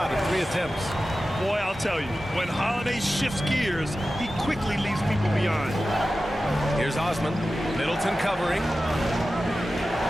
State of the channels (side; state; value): both; normal; correlation 0.94